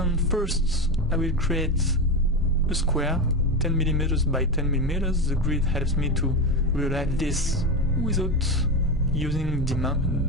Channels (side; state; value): both; normal; correlation 0.17